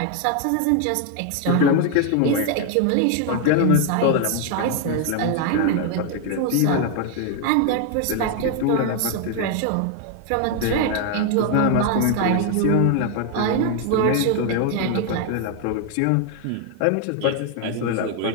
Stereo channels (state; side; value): different; both; correlation 0.01